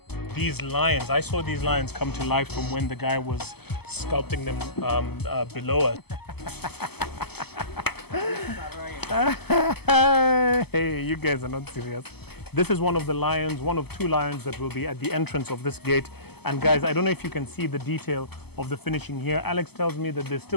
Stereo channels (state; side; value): late; right; 0.97 ms